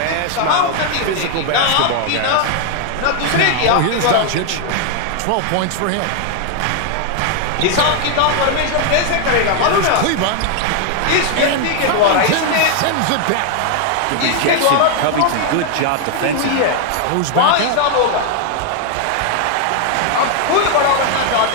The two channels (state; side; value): different; both; correlation 0.00